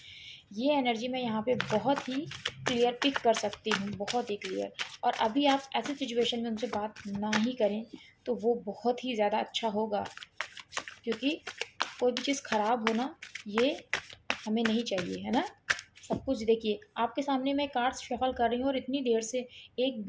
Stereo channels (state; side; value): identical; both; correlation 1.00